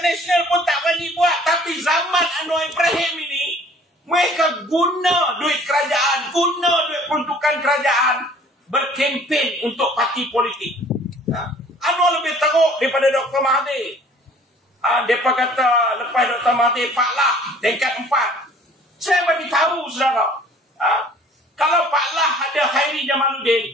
Nasional pun tak berani buat. Tapi zaman Anwar Ibrahim ini, mereka guna duit kerajaan, guna duit peruntukan kerajaan, berkempen untuk parti politik. Anwar lebih teruk daripada Dr. Mahathir. Mereka kata lepas Dr. Mahathir, Pak Lah tingkat 4. Saya bagi tahu saudara, kalau Pak Lah ada Khairi Jamaluddin,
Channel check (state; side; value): normal; both; correlation 0.53